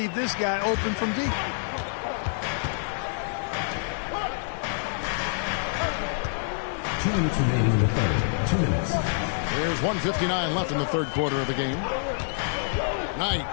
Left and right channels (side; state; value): right; silent; 60 dB below the other